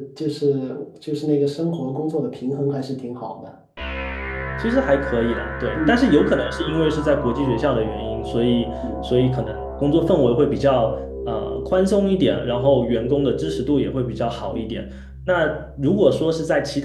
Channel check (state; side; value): identical; both; correlation 1.00